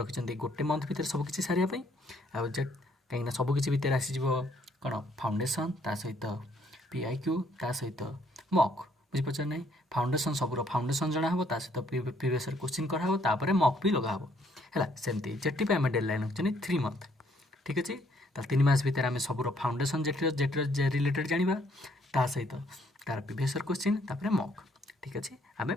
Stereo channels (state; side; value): normal; both; correlation 0.67